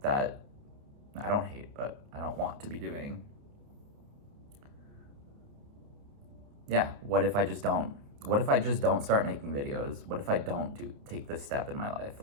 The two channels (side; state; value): left; late; 29 ms